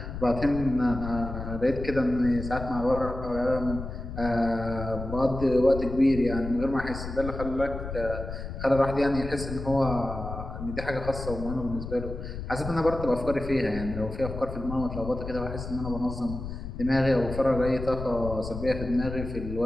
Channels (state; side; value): noise; left; rumble, 8 dB below the sound